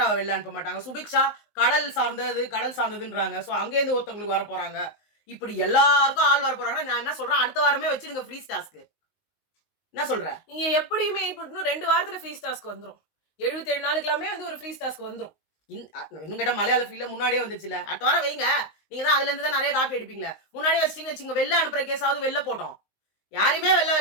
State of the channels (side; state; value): right; late; 19 ms